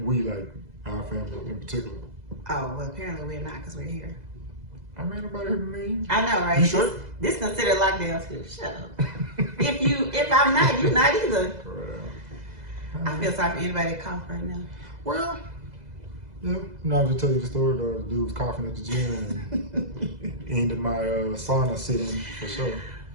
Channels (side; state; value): left; late; 2.0 ms